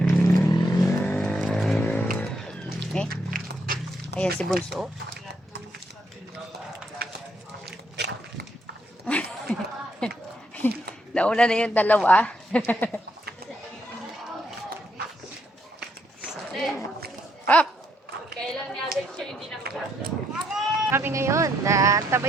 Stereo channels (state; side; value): normal; both; correlation 0.75